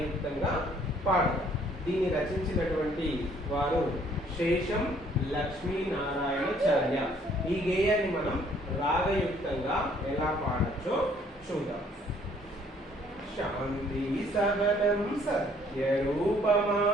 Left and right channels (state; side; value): normal; both; correlation 0.61